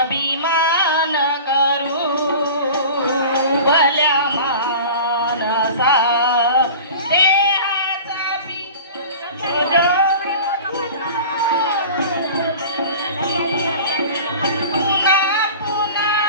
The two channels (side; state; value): both; inverted; correlation -0.38